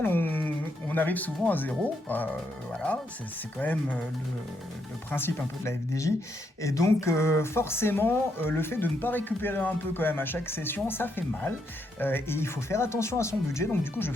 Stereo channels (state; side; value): normal; both; correlation 0.78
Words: on arrive souvent à zéro. Voilà, c'est quand même le principe un peu de la FDJ. Et donc forcément le fait de ne pas récupérer un peu quand même à chaque session, ça fait mal. Et il faut faire attention à son budget, donc du coup je